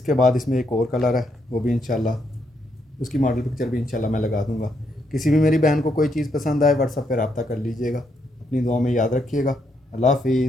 बाद इसमें एक और कलर है, वो भी इंशाल्लाह उसकी मॉडल पिक्चर भी इंशाल्लाह मैं लगा दूंगा। किसी भी मेरी बहन को कोई चीज़ पसंद आए व्हाट्सएप पर रब्ता कर लीजिएगा। अपनी दुआ में याद रखिएगा। अल्लाह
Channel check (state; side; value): normal; both; correlation 0.77